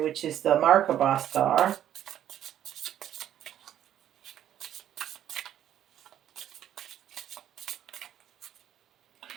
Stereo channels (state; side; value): quieter; left; 11.0 dB